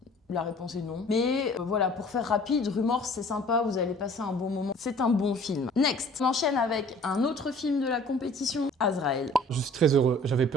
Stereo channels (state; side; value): normal; both; correlation 0.50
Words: La réponse est non. Mais voilà, pour faire rapide, Rumors c'est sympa, vous allez passer un bon moment. C'est un bon film. Next, on enchaîne avec un autre film de la compétition, Azrael. Je suis très heureux. J'avais